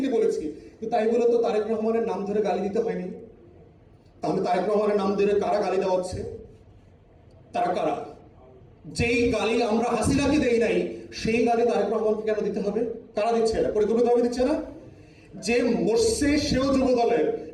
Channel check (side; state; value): both; identical; correlation 1.00